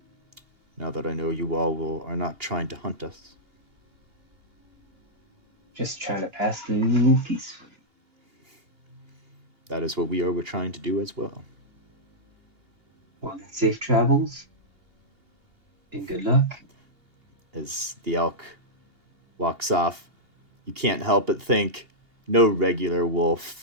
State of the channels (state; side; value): late; left; 2.8 ms